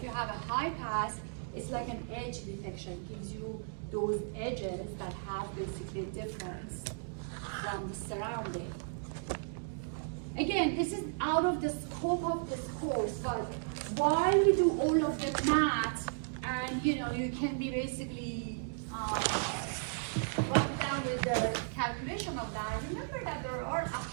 you have a high pass, it's like an edge detection. It gives you those edges that have basically a difference from the surrounding. Again, this is out of the scope of this course, but while we do all of the math, and you can be basically run down with the calculation of that, remember that there are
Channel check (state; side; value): silent; left; digital silence